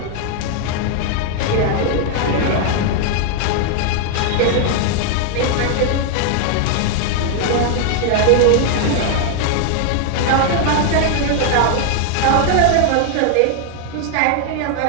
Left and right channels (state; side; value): different; both; correlation 0.00